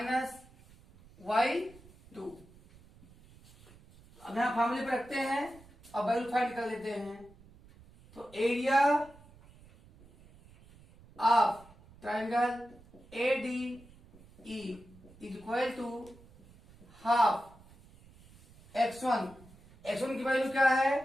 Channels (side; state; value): right; noise; rumble, 24 dB below the sound